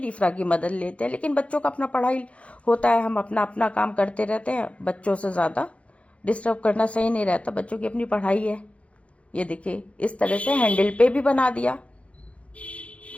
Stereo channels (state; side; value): late; right; 0.063 ms